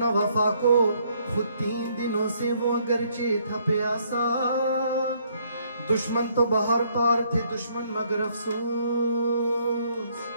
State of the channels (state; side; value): inverted; both; correlation -0.68